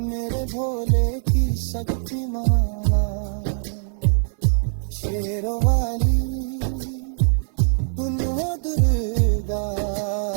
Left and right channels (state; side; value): silent; left; 64 dB below the other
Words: भोले की शक्ति माना। शेरों वाली तुम हो दुर्गा